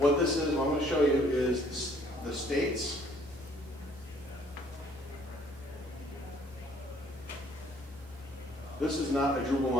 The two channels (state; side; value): normal; both; correlation 0.61